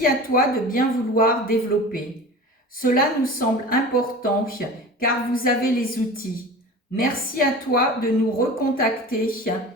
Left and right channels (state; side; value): normal; both; correlation 0.36